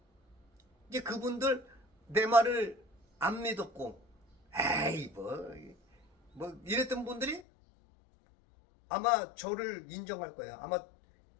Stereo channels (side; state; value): right; drops out; at 7.4 s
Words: 이제 그분들 내 말을 안 믿었고 에이 뭐 이랬던 분들이 아마 저를 인정할 거예요. 아마